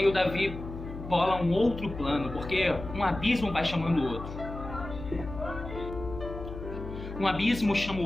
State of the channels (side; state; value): left; noise; hum, 10 dB below the sound